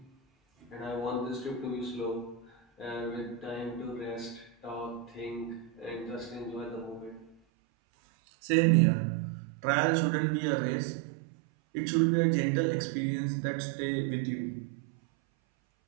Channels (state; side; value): drops out; left; at 7.4 s